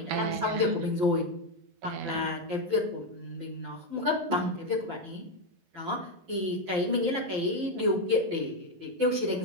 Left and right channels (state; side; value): late; left; 11 ms